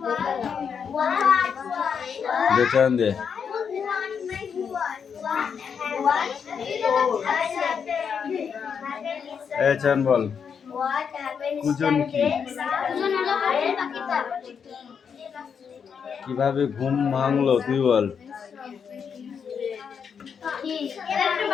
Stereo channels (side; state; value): right; quieter; 6.8 dB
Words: বেচান দে। এই চান বল, কুজন কি? কিভাবে ঘুম ভাঙলো তুই বল।